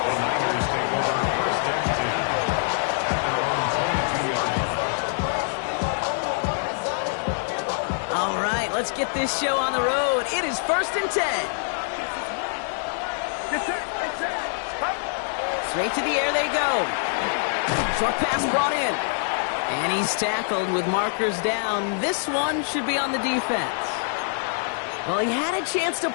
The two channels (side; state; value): right; silent; digital silence